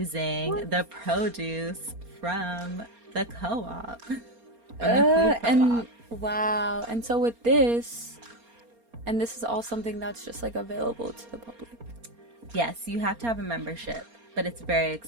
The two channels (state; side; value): late; left; 4.3 ms